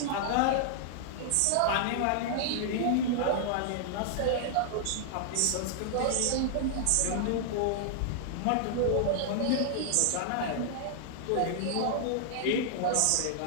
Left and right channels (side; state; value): both; different; correlation -0.01